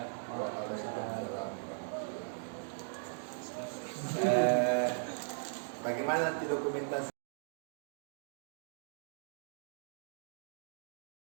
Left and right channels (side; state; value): left; silent; digital silence